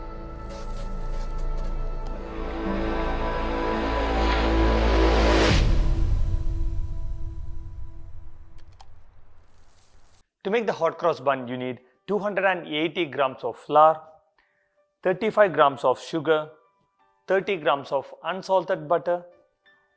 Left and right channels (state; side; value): identical; both; correlation 1.00